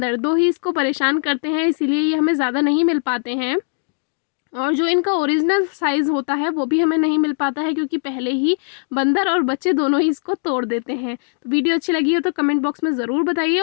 दो ही इसको परेशान करते हैं, इसीलिए ये हमें ज़्यादा नहीं मिल पाते हैं, और जो इनका ओरिजिनल साइज़ होता है वो भी हमें नहीं मिल पाता है, क्योंकि पहले ही बंदर और बच्चे दोनों ही इसको तोड़ देते हैं। तो वीडियो अच्छी लगी हो तो कमेंट बॉक्स में ज़रूर बताइए,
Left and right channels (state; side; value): silent; right; 66 dB below the other